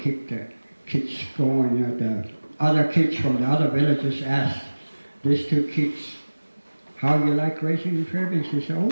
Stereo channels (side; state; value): both; inverted; correlation -1.00